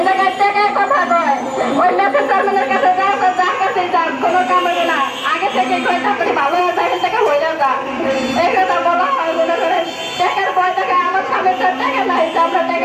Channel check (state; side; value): identical; both; correlation 1.00